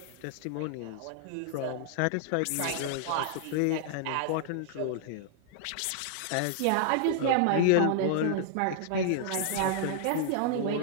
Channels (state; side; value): different; both; correlation -0.01